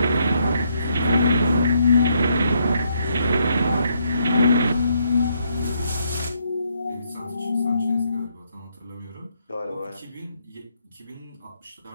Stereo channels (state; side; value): inverted; both; correlation -0.74